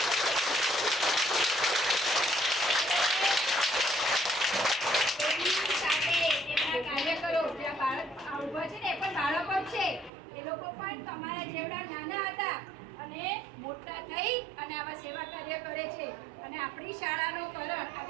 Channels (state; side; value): drops out; left; at 10.1 s